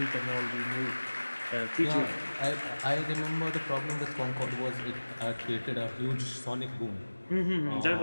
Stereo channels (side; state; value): both; inverted; correlation -1.00